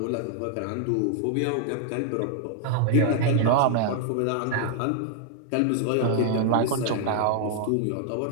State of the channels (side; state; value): both; different; correlation 0.00